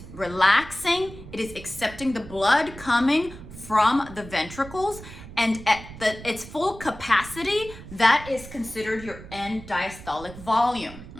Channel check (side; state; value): right; noise; rumble, 15 dB below the sound